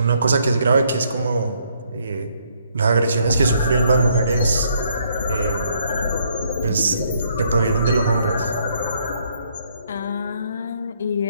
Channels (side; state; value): both; inverted; correlation -0.70